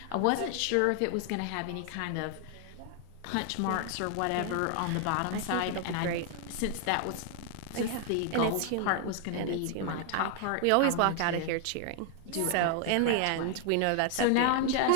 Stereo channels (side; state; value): both; different; correlation 0.00